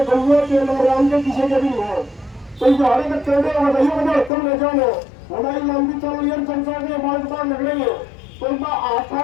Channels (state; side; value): drops out; right; at 4.3 s